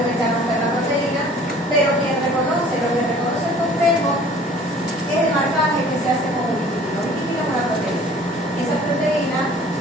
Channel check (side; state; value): both; normal; correlation 0.51